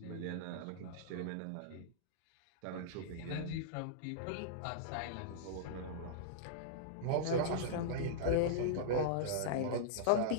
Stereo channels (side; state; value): both; different; correlation -0.03